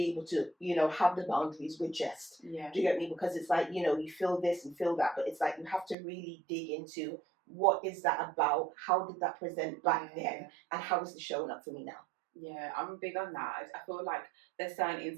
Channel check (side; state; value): left; drops out; at 6.0 s